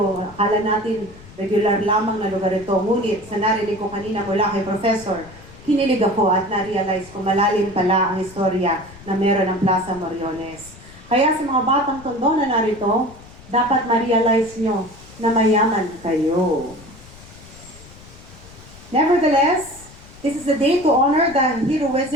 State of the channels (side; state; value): left; noise; rumble, 20 dB below the sound